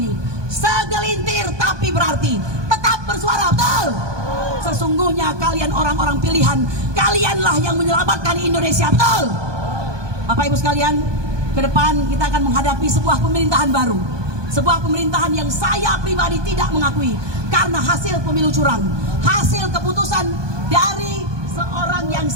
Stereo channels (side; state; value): left; late; 1.2 ms